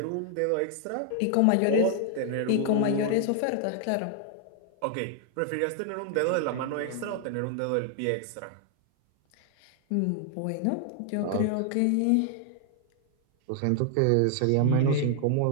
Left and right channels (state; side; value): different; both; correlation 0.00